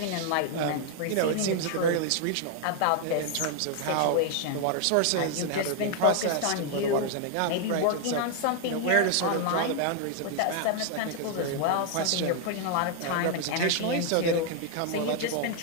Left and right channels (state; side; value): different; both; correlation 0.00